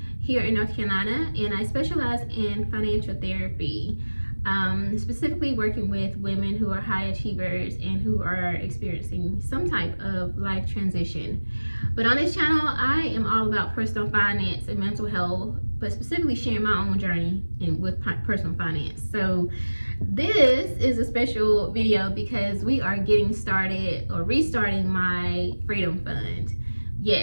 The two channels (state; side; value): inverted; both; correlation -1.00